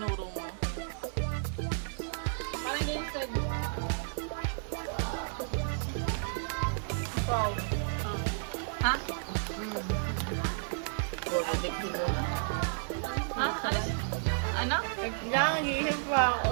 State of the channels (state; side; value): silent; left; digital silence